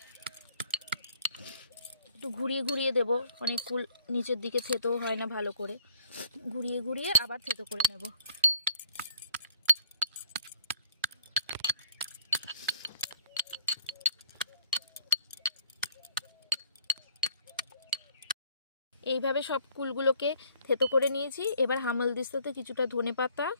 একটু ঘুরিয়ে ঘুরিয়ে দেব, অনেক কুল নিচের দিকে থেতো হয় না, ভালো করে ঘুরিয়ে ঘুরিয়ে আবার থেতো করে নেব। এইভাবে সব কুলগুলোকে থেতো করে নিয়েছি। এবার হামালদিস্তাতে কিছুটা ধনেপাতা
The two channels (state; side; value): inverted; both; correlation -0.59